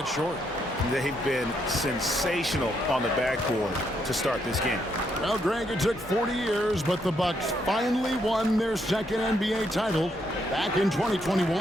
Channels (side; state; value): both; normal; correlation 0.76